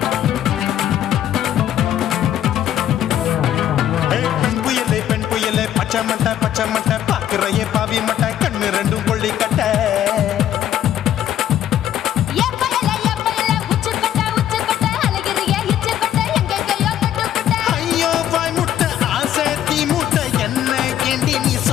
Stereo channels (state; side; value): quieter; right; 11.1 dB